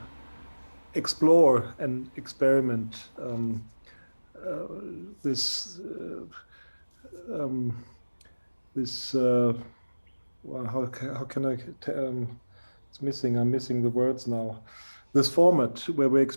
explore and experiment this well, how can I it's missing, I'm missing the words now, this format where we're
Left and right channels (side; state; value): both; inverted; correlation -1.00